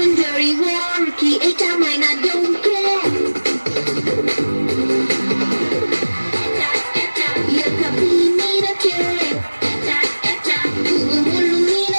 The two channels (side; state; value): both; inverted; correlation -1.00